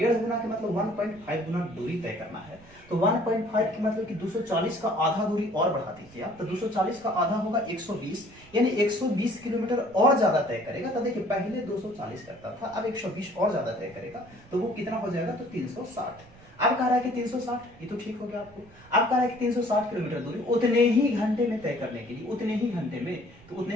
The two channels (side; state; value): right; noise; rumble, 24 dB below the sound